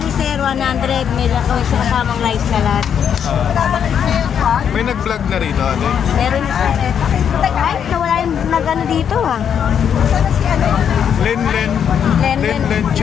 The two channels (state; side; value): quieter; right; 8.2 dB